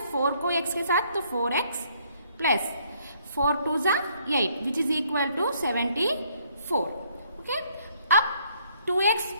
4 को x के साथ तो 4x प्लस 4 2 जा 8 which is equal to 74। Okay, अब 2x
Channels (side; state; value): both; inverted; correlation -0.66